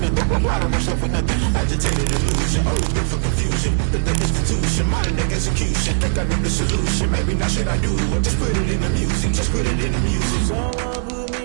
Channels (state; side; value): silent; left; digital silence